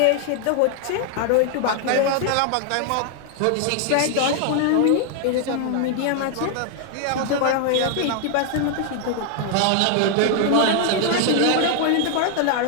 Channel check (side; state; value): both; different; correlation 0.00